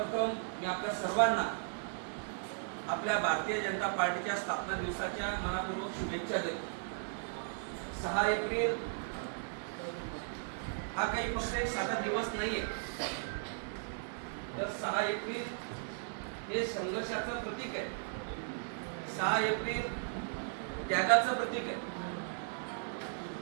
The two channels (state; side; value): silent; left; 53 dB below the other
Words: मी आपल्या सर्वांना आपल्या भारतीय जनता पार्टीच्या स्थापना दिवसाच्या मनापूर्वक शुभेच्छा देतो. 6 एप्रिल हा काही फक्त एक साधा दिवस नाहीये, तर 6 एप्रिल हे संघर्षाचं प्रतीक आहे. 6 एप्रिल त्यागाचं प्रतीक आहे.